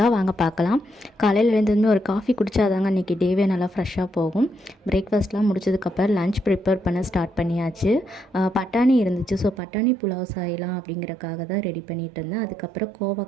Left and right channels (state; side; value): drops out; left; at 9.6 s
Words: வாங்க பார்க்கலாம். காலையில் எழுந்ததுமே ஒரு காஃபி குடித்தாதாங்க அன்றைக்கி டேவே நல்லா ஃப்ரெஷ்ஷாக போகும். பிரேக்ஃபாஸ்ட்லாம் முடிச்சதுக்கப்புறம் லன்ச் ப்ரிப்பேர் பண்ண ஸ்டார்ட் பண்ணியாச்சு. பட்டாணி இருந்துச்சு, ஸோ பட்டாணி புலாவ் செய்யலாம் அப்படிங்கிறக்காக தான் ரெடி பண்ணிகிட்டு இருந்தேன். அதுக்கப்புறம்